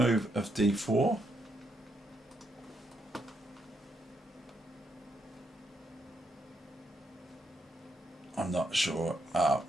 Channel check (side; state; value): both; normal; correlation 0.78